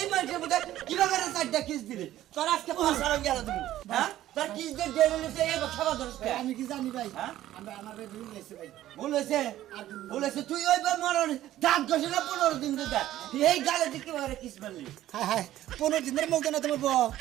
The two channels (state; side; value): quieter; left; 13.7 dB